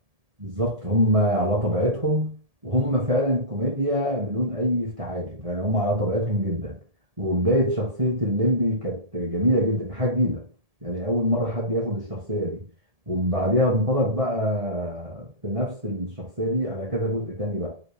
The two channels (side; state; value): left; late; 1.7 ms